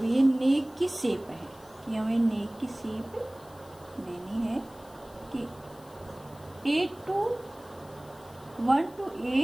ये नेक की शेप है, कि हमें नेक की शेप देनी है कि 1 to A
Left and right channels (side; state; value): left; noise; hiss, 25 dB below the sound